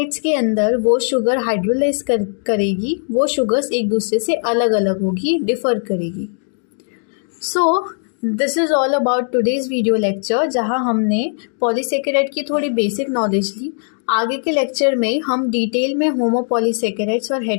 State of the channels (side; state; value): right; silent; 61 dB below the other